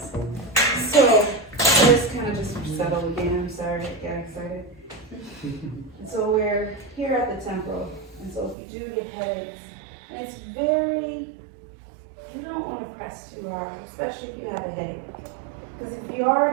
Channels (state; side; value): drops out; left; at 8.6 s